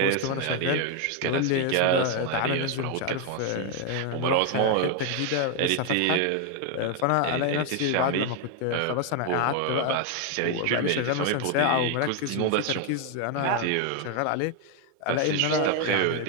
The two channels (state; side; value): different; both; correlation 0.01